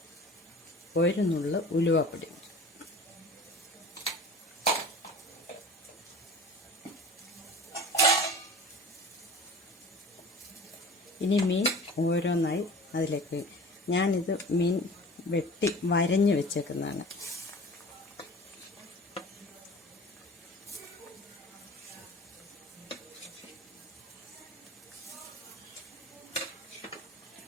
ഒരു നുള്ള് ഉലുവപ്പൊടി. ഇനി മീൻ ഓരോന്നായി അതിലേക്ക്. ഞാനിത് മീൻ വെട്ടി വരഞ്ഞ് വെച്ചേക്കുന്നതാണ്.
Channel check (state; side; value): normal; both; correlation 0.41